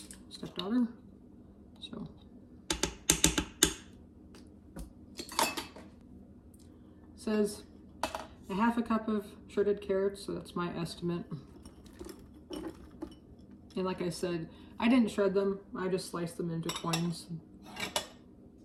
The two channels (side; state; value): both; identical; correlation 1.00